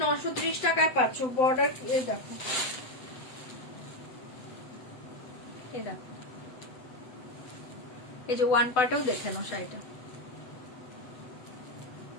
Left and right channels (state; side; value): late; right; 7.9 ms